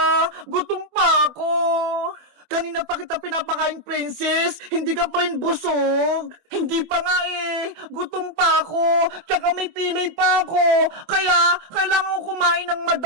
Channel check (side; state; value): left; late; 24 ms